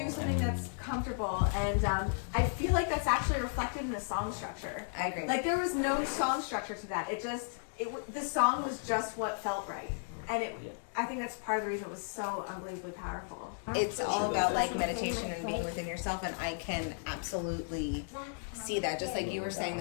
something that's comfortable, and I feel like that's actually reflected in the song structure. I agree. Like there was no song structure to that. The song was just what felt right, and I think that's part of the reason it was so unbelievably powerful. It's all about like meditation and being within yourself, and I can absolutely see that. Just like you were saying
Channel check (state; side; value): silent; right; digital silence